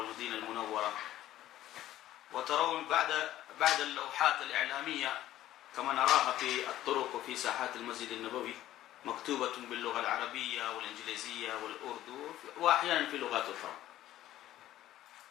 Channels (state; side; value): quieter; right; 13.6 dB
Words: المنورة. وترون بعد اللوحات الإعلامية كما نراها في الطرق وفي ساحات المسجد النبوي مكتوبة باللغة العربية والإنجليزية والأردو وأحيانا في لغات أخرى.